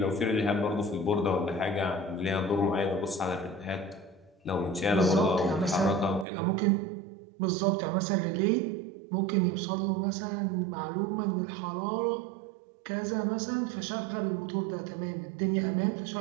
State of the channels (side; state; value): left; drops out; at 6.2 s